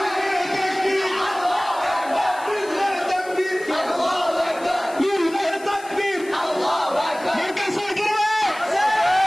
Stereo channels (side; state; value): left; noise; hiss, 20 dB below the sound